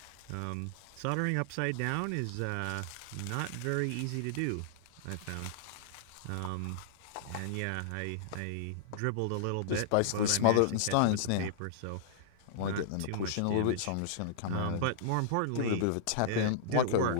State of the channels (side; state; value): both; different; correlation -0.02